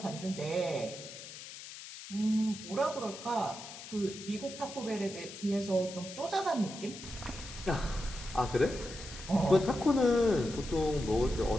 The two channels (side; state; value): left; noise; hiss, 13 dB below the sound